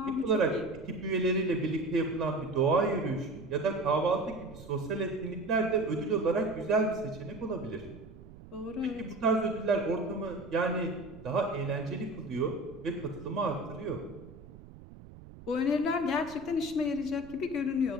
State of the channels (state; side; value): noise; right; rumble, 18 dB below the sound